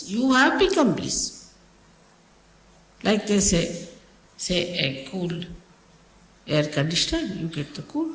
You have become bliss. Like they say a cool air conditioner, you get the cool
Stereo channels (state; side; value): identical; both; correlation 1.00